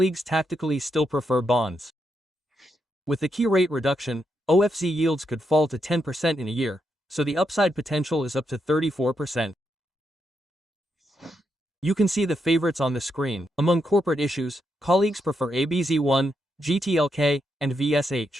tactically still prefer bonds. With the key rate reduction, OFZ yields could fall to 10% in a year, so the upside potential is up to 34%. You can see the favorites on the screen. Among corporate issues, colleagues prefer ABZ1, GTLK, and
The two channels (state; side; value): normal; both; correlation 0.82